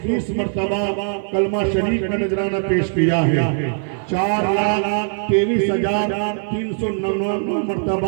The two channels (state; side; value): silent; left; 56 dB below the other